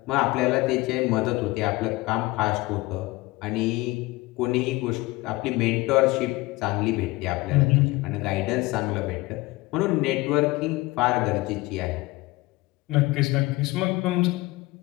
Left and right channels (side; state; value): right; quieter; 21.2 dB